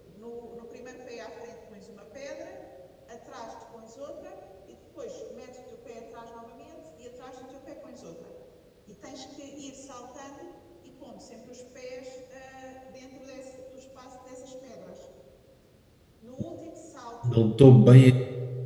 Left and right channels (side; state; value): both; identical; correlation 1.00